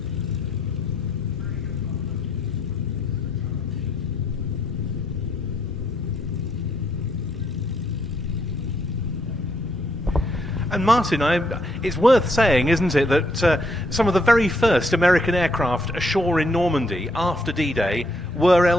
And Martin, it's worth saying, isn't it, that some of the very first American aircraft ashore in Normandy after D-Day were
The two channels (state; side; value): normal; both; correlation 0.73